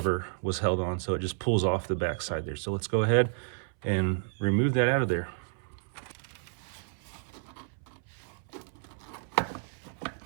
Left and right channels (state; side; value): silent; left; 57 dB below the other